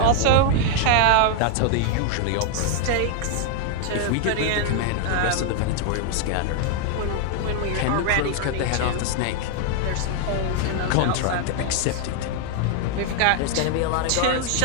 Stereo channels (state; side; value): different; both; correlation 0.00